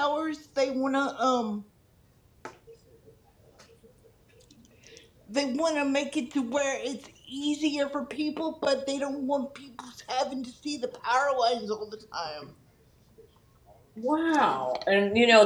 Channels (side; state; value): both; identical; correlation 1.00